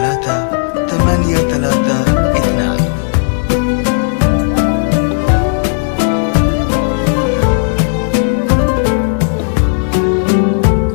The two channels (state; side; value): silent; right; 67 dB below the other